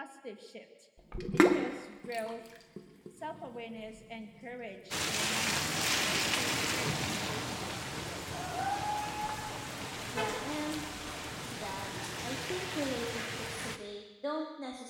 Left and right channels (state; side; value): identical; both; correlation 1.00